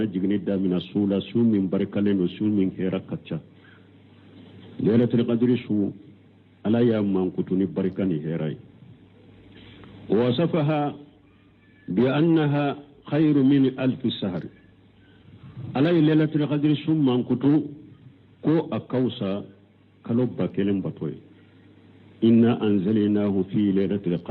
jigni damina sula su min barkaleno su min herakacca lailatul qadri su ala ya man kutu ni barkani herai wasafaha bi annaha khairu min alf shahr ala lailatul qadri su man kutu ko akausa kalobba kelen batoy inna anzalnahu fi lailatul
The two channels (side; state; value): both; identical; correlation 1.00